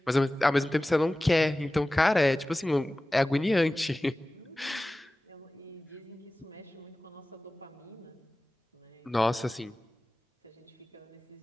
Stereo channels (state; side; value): normal; both; correlation 0.97